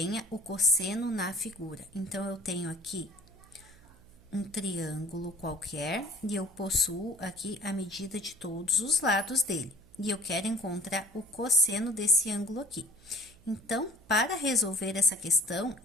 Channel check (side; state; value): right; noise; hum, 25 dB below the sound